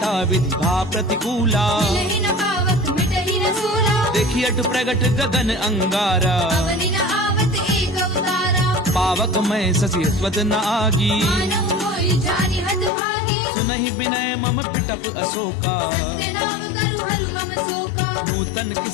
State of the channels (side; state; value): right; drops out; at 12.9 s